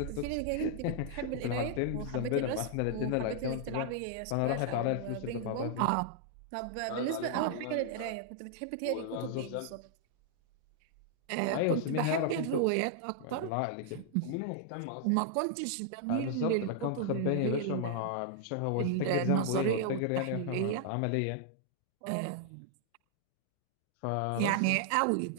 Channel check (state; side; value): different; both; correlation -0.01